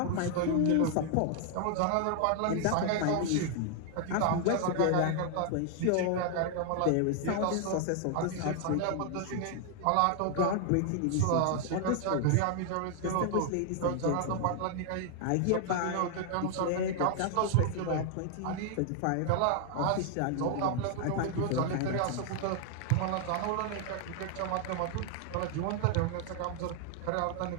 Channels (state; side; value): different; both; correlation 0.00